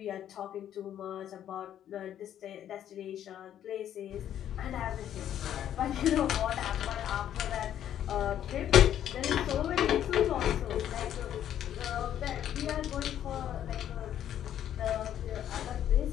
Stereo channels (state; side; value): quieter; right; 10.6 dB